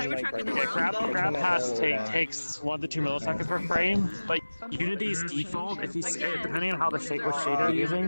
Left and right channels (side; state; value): both; inverted; correlation -1.00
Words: in the world? Grab pass takes 1 to 2 milliseconds per frame, but Unity's default, if you depending on how the shader you're